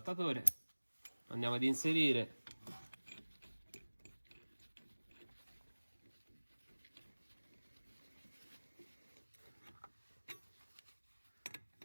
andiamo ad inserire,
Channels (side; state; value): both; inverted; correlation -1.00